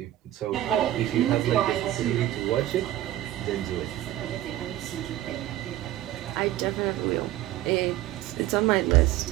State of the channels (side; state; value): left; quieter; 14.1 dB